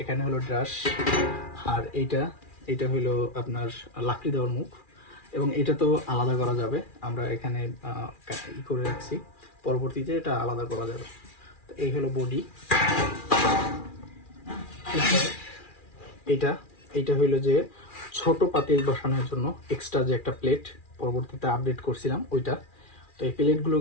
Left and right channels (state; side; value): late; right; 2.4 ms